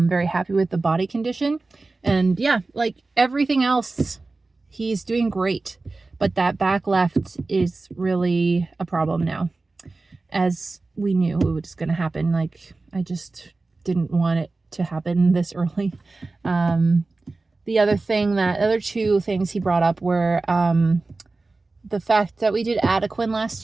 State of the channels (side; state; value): left; quieter; 3.5 dB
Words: happy with the body condition. And yeah, like everything else, he's doing great. But that back left is really a problem now. As we knew it was going to happen. Like, I just didn't want it to happen this early. The other 2 things he brought up were the fact that we did Adequan last